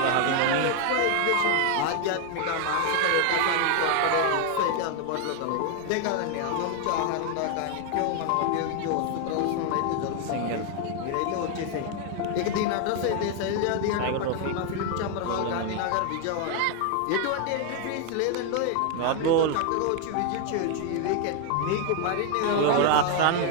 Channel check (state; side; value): different; both; correlation 0.00